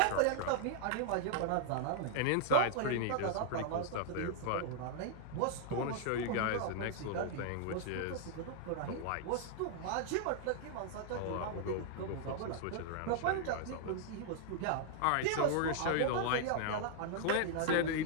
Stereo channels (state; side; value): different; both; correlation -0.01